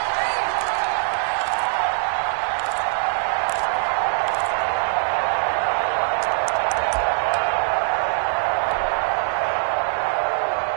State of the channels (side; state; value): left; silent; 64 dB below the other